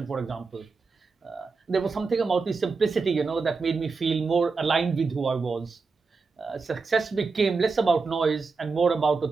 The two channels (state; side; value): quieter; left; 4.5 dB